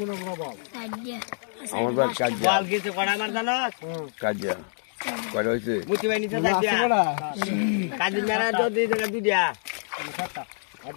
বল আমার বাদ কাজিয়া বল গেছে কড়া মার জানো কাজিয়া কয়টা হইছে মুতি ভাই নিচে যাইয়া কাজি মেরা যদি দুইটা আর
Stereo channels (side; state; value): right; silent; digital silence